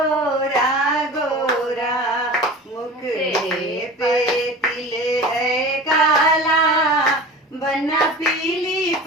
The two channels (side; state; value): both; normal; correlation 0.37